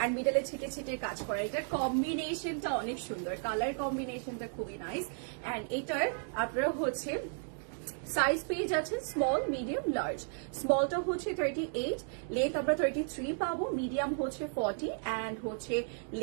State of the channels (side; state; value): left; silent; 55 dB below the other